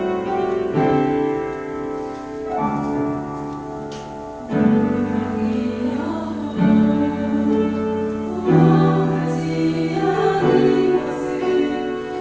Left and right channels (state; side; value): identical; both; correlation 1.00